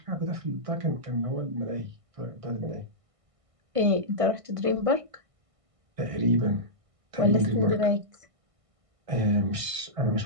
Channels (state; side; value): late; left; 1.5 ms